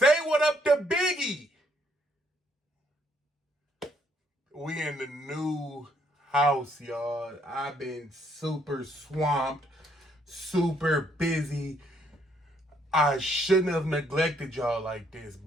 what up to Biggie. We in the new house, y'all. I've been super swamped, super busy. I shouldn't have neglected y'all like this,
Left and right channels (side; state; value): both; normal; correlation 0.70